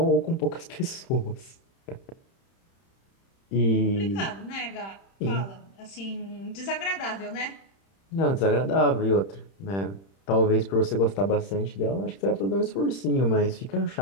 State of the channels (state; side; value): late; right; 31 ms